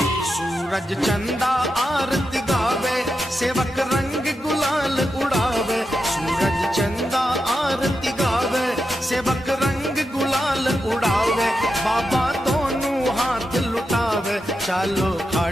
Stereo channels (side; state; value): both; normal; correlation 0.87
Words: सूरज चंदा आरती गावे, सेवक रंग गुलाल उड़ावे। सूरज चंदा आरती गावे, सेवक रंग गुलाल उड़ावे। बाबा दोनों चालो